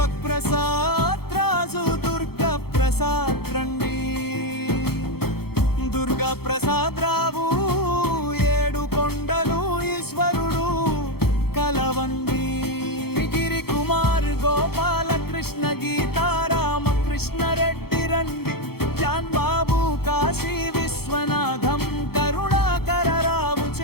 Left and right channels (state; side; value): late; right; 0.96 ms